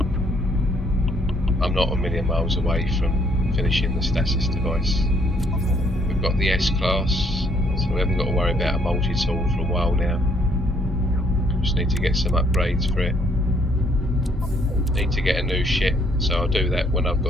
I'm not a million miles away from finishing the Stasis device. We've got the S-Class, so we haven't got to worry about a multi-tool for a while now. Just need to get some upgrades for it. Need to get a new ship, so I'll do that when I've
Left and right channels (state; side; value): normal; both; correlation 0.67